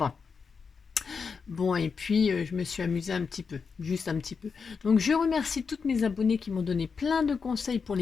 Bon, et puis je me suis amusée un petit peu, juste un petit peu. Donc je remercie toutes mes abonnées qui m'ont donné plein de conseils pour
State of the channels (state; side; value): quieter; right; 5.5 dB